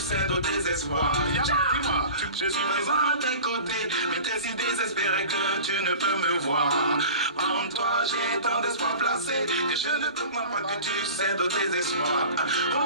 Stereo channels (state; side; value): inverted; both; correlation -0.38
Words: au désespoir. Dis-moi, je suis présent à tes côtés, mais t'es si désespéré que tu ne peux me voir. En toi j'ai tant d'espoir placé que je ne comprends pas que tu cèdes au désespoir.